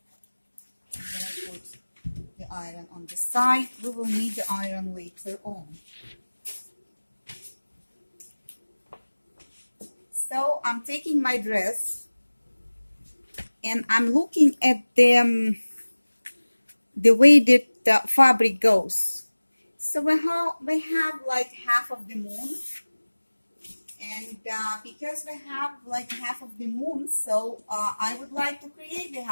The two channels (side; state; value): both; inverted; correlation -1.00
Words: I'm gonna put the iron on the side. We will need the iron later on. So I'm taking my dress and I'm looking at the way that the fabric goes. So we have like half of the moon, and because we have like half of the moon, so I would like to create the